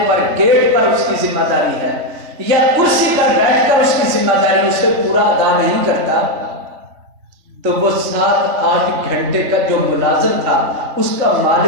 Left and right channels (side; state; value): left; late; 3.4 ms